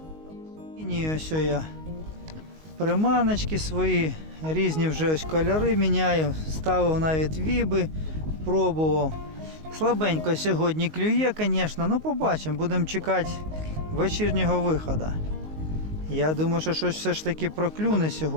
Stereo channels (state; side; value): late; left; 19 ms